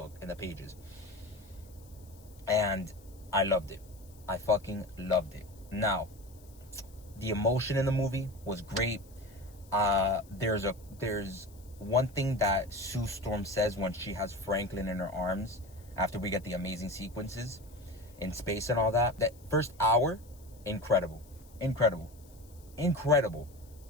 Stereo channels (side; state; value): left; noise; hiss, 26 dB below the sound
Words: in the pages. And I loved it. I fucking loved it. Now, the emotion in the movie was great. There's one thing that Sue Storm says when she has Franklin in her arms after we get the amazing sequences in space and all that. That first hour, incredible.